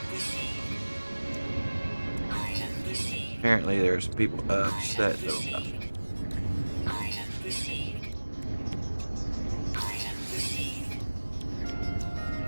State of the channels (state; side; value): inverted; both; correlation -1.00